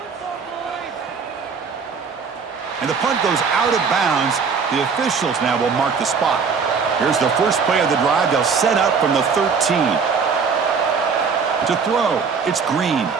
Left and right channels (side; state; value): left; quieter; 5.6 dB